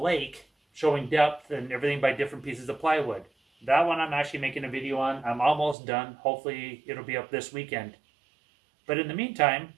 showing depth and everything by different pieces of plywood. That one I'm actually making a video on. I'm almost done. Hopefully it'll be up this weekend. But in the meantime,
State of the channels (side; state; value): left; drops out; at 5.8 s